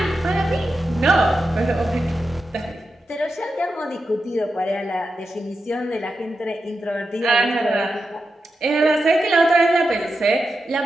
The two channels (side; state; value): both; normal; correlation 0.89